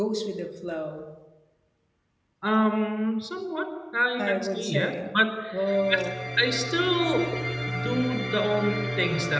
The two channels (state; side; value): identical; both; correlation 1.00